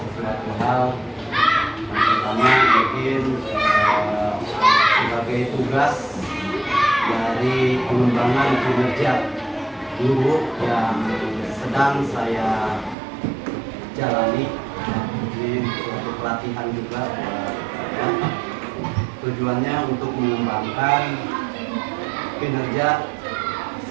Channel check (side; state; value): left; drops out; at 13.0 s